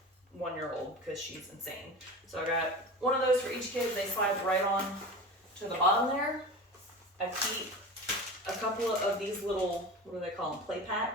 1-year-old because she's insane. So I got one of those for each kid. They slide right on to the bottom there. I keep a couple of these little, what do they call them, play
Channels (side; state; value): both; normal; correlation 0.31